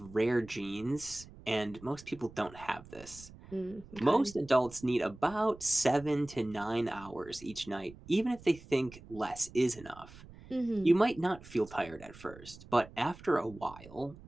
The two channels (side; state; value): right; noise; rumble, 19 dB below the sound